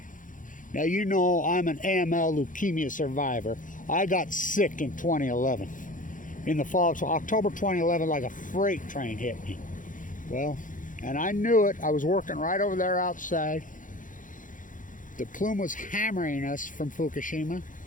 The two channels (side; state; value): right; late; 0.38 ms